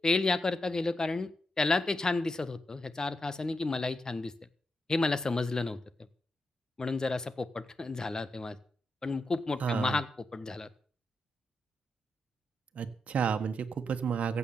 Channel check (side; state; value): both; normal; correlation 0.84